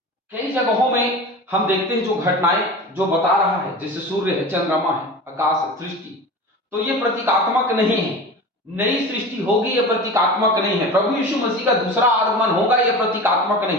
कई जगहों में हम देखते हैं जो घटनाएं जो बता रहा है, जैसे सूर्य है, चंद्रमा है, आकाश है, सृष्टि, तो ये प्रतीकात्मक नहीं है। नई सृष्टि होगी, यह प्रतीकात्मक नहीं है। प्रभु यीशु मसीह का दूसरा आगमन होगा, यह प्रतीकात्मक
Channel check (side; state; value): both; normal; correlation 0.33